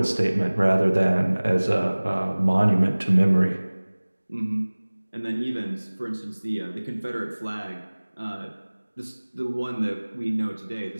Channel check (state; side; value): inverted; both; correlation -1.00